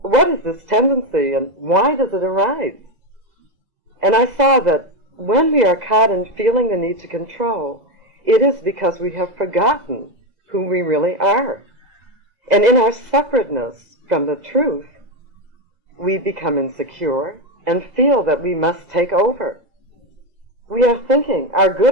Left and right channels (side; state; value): left; late; 2.0 ms